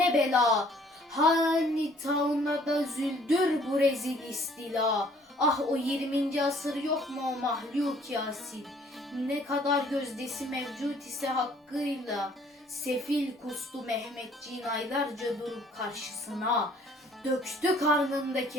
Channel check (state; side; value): normal; both; correlation 0.58